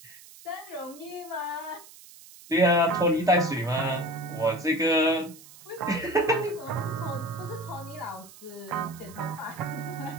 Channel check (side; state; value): right; noise; hiss, 20 dB below the sound